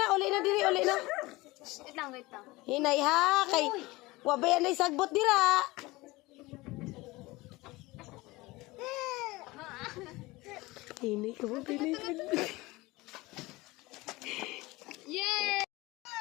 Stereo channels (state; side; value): quieter; right; 21.2 dB